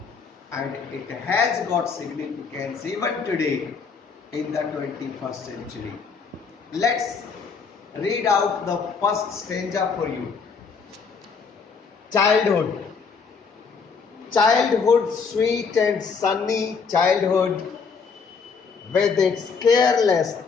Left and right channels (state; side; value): quieter; right; 5.4 dB